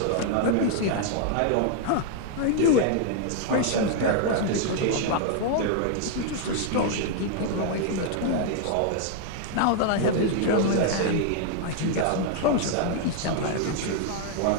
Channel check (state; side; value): different; both; correlation 0.00